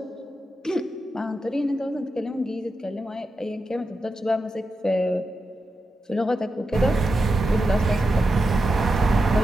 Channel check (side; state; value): both; normal; correlation 0.89